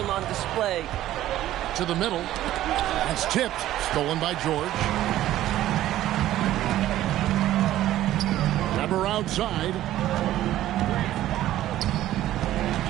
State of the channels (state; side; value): quieter; left; 13.8 dB